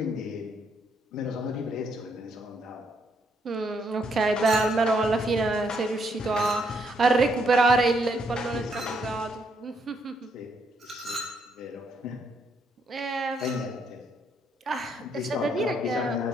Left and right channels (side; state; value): both; normal; correlation 0.74